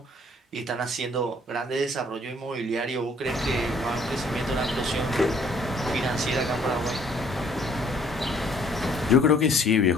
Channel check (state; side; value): normal; both; correlation 0.61